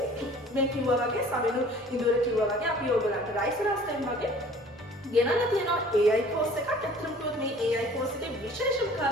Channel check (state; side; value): normal; both; correlation 0.49